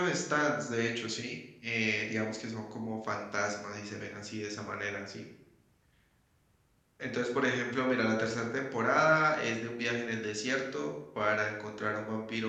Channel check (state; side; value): identical; both; correlation 1.00